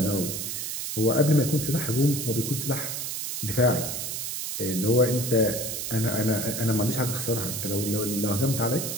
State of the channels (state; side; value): noise; right; hiss, 4 dB below the sound